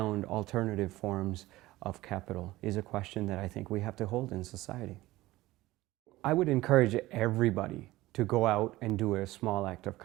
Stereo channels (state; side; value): quieter; left; 17.9 dB